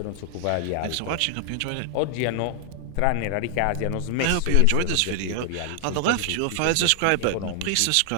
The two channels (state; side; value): different; both; correlation -0.01